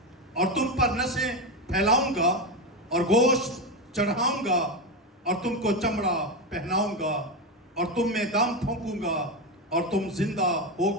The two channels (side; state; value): both; normal; correlation 0.13